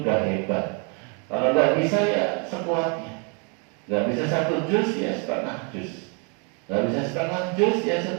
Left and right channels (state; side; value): quieter; left; 36.0 dB